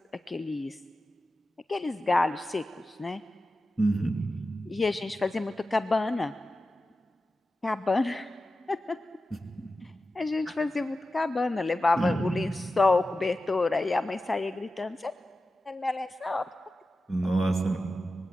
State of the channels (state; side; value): normal; both; correlation 0.93